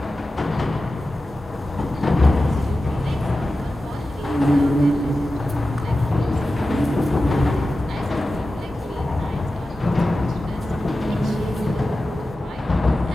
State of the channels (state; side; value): normal; both; correlation 0.93